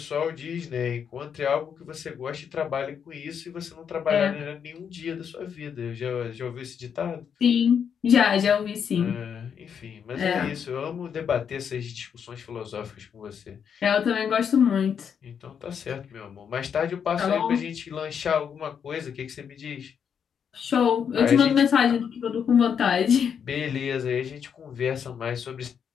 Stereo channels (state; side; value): quieter; right; 7.5 dB